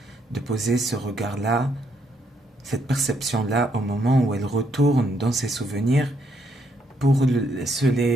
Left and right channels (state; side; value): normal; both; correlation 0.73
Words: de poser ce regard-là, cette perception-là au moment où elle retourne dans ses souvenirs pour se